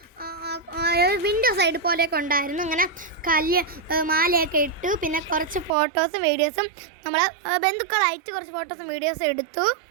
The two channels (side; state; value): left; drops out; at 5.7 s